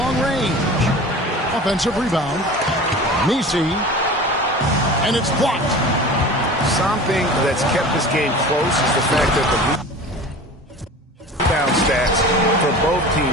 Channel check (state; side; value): normal; both; correlation 0.37